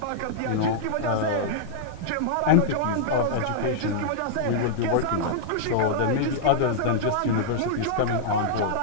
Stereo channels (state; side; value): different; both; correlation -0.01